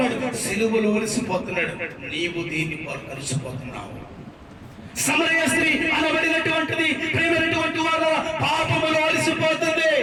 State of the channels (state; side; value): identical; both; correlation 1.00